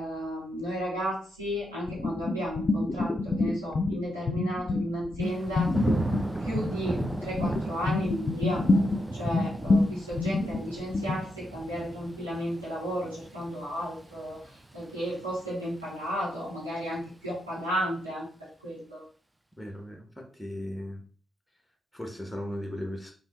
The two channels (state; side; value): normal; both; correlation 0.82